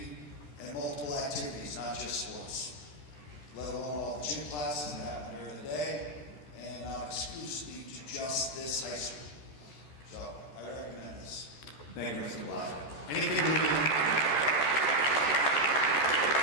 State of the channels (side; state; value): right; late; 13 ms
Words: and multiple activities, not just sports, let alone all the gym classes that happen during the day and not exclusively to just this high school. So I recommend this. Thank you, Mr. Blaska. Anything